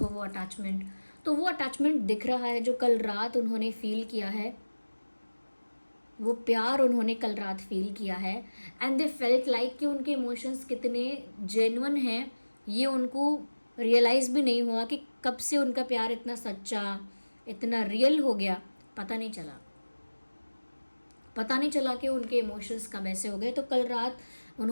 वो अटैचमेंट। तो वो अटैचमेंट दिख रहा है जो कल रात उन्होंने फील किया है, वो प्यार उन्होंने कल रात फील किया है, एंड दे फेल्ट लाइक कि उनके इमोशंस कितने जेन्युइन हैं, ये उनको रियलाइज़ भी नहीं हुआ कि कब से उनका प्यार इतना सच्चा, इतना रियल हो गया, पता नहीं चला कि उनके इमोशंस कब ऐसे हो गए। तो कल रात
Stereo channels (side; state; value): both; inverted; correlation -1.00